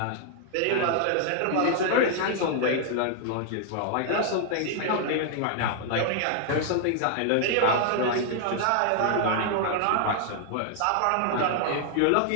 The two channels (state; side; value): different; both; correlation 0.00